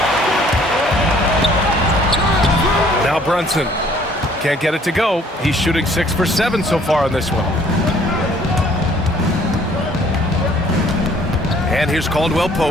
Now Brunson. Can't get it to go. He's shooting 6 for 7 so far on this one. And here's Caldwell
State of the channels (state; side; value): normal; both; correlation 0.58